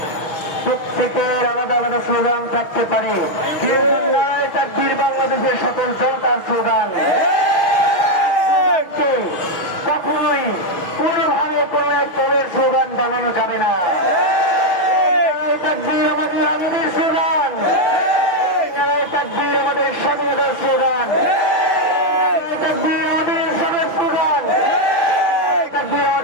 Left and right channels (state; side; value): late; right; 6.4 ms